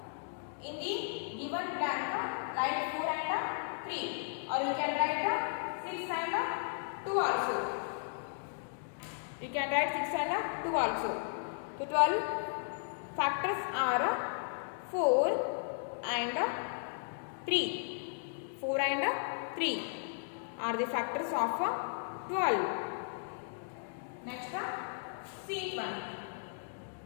In the given blank, write 4 and 3, or you can write 6 and 2 also. You can write 6 and 2 also. So 12 factors are 4 and 3. 4 and 3 are the factors of 12. Next, sheet 1.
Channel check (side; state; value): right; silent; digital silence